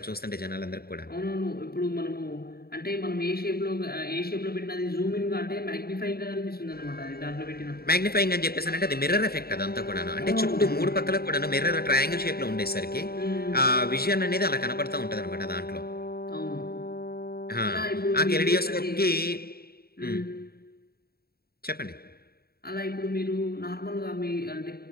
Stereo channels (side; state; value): right; late; 0.45 ms